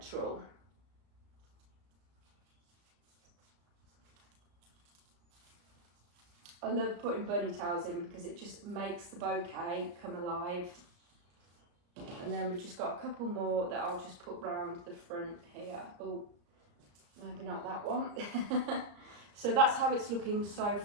I love putting bunny tails in because it just makes the bouquet come alive. And then we've just got a couple more that I'll just put round the front here. Oh, maybe not that one. So that's how it's looking so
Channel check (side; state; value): left; late; 34 ms